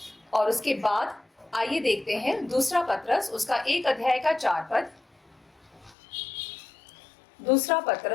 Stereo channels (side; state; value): right; drops out; at 6.0 s